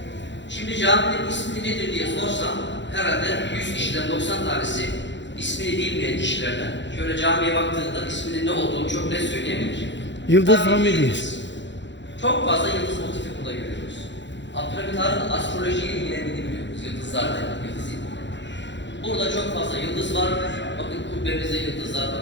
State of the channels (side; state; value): right; late; 0.53 ms